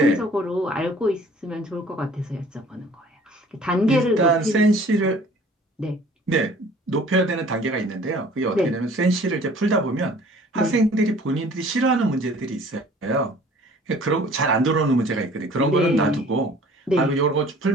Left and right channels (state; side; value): normal; both; correlation 0.51